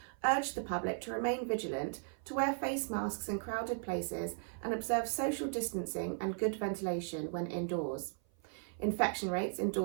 urged the public to remain vigilant, to wear face masks in crowded places and observe social distancing and good ventilation when indoors. Infection rates in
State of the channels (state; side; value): silent; left; 53 dB below the other